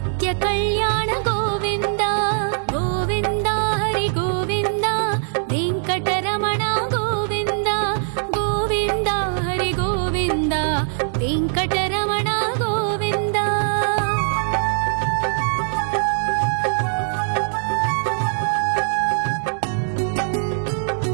కళ్యాణ గోవింద గోవింద హరి గోవింద వెంకటరమణ గోవింద గోవింద హరి గోవింద వెంకటరమణ గోవింద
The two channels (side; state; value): left; silent; digital silence